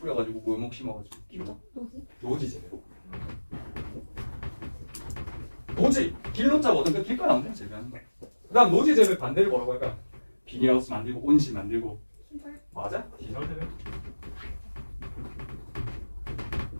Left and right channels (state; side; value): inverted; both; correlation -1.00